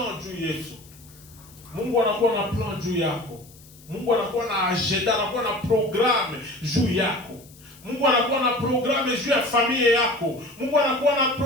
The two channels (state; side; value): noise; left; hiss, 24 dB below the sound